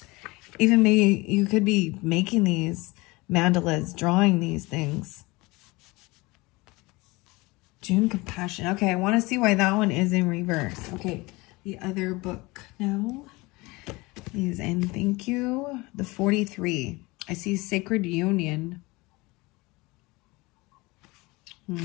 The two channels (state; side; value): quieter; right; 23.2 dB